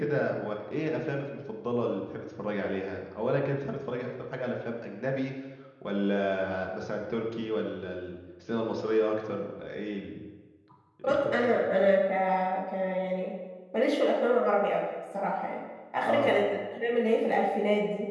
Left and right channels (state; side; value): identical; both; correlation 1.00